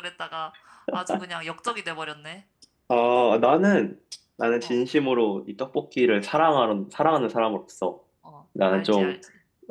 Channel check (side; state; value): both; identical; correlation 1.00